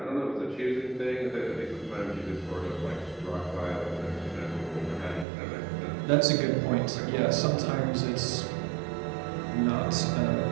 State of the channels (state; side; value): drops out; left; at 5.2 s